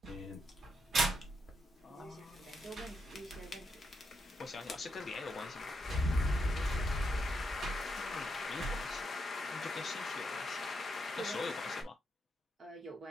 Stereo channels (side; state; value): both; normal; correlation 0.81